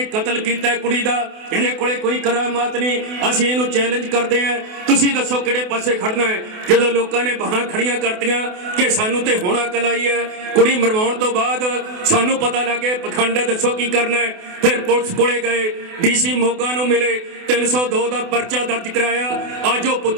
ਕਤਲ ਕੀਤਾ ਕੁੜੀ ਦਾ, ਇਹਦੇ ਕੋਲੇ ਕੋਈ ਕਰਾਮਾਤ ਨਹੀਂ, ਅਸੀਂ ਇਹਨੂੰ ਚੈਲੰਜ ਕਰਦੇ ਹਾਂ, ਤੁਸੀਂ ਦੱਸੋ ਕਿਹੜੇ ਪਾਸੇ ਖੜਨਾ ਹੈ। ਜਦੋਂ ਲੋਕਾਂ ਨੇ ਬਾਹਾਂ ਖੜੀਆਂ ਕਰਤੀਆਂ ਕਿ ਸਾਨੂੰ ਤੇ ਹੁਣ ਅਕਲ ਆਈ ਹੈ, ਕੁੜੀ ਮਰਵਾਉਣ ਤੋਂ ਬਾਅਦ ਸਾਨੂੰ ਪਤਾ ਲੱਗੇ ਪਖੰਡ, ਦੱਸੋ ਕੀ ਕਰਨਾ ਹੈ। ਫਿਰ ਪੁਲਿਸ ਕੋਲੇ ਗਏ, ਡੀਸੀ ਮੋਗਾ ਨੂੰ ਮਿਲੇ, 302 ਦਾ ਪਰਚਾ ਦਰਜ ਕਰਾਇਆ। ਅੱਜ ਉਹ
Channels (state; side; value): late; left; 28 ms